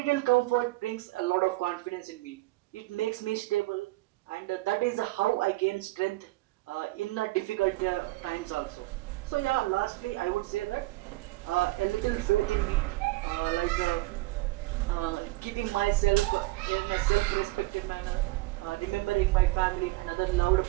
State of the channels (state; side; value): quieter; left; 20.2 dB